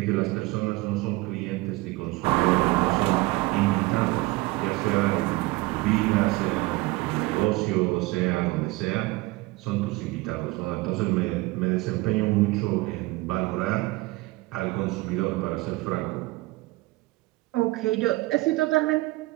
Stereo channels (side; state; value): left; quieter; 21.4 dB